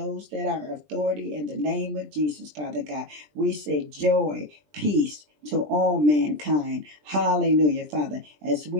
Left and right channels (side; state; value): left; late; 20 ms